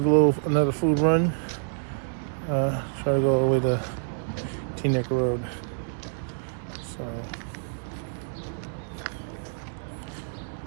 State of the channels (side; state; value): left; silent; 57 dB below the other